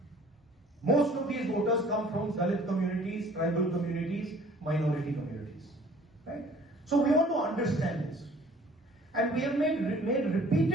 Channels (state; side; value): normal; both; correlation 0.53